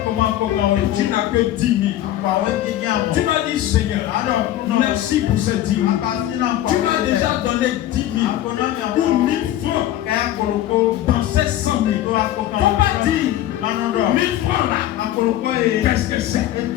Et tu n'as que 10 000. Tu m'as dit Seigneur, merci pour cette 10 000. Tu m'as déjà donné 10 000 ou 1000 francs dans ces 100 000. Faut pas dire 1000 francs là. Qu'est-ce que c'est?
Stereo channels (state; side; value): quieter; right; 13.2 dB